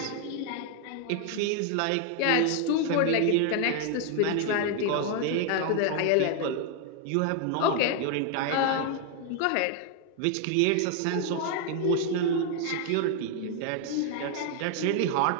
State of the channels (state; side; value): different; both; correlation 0.00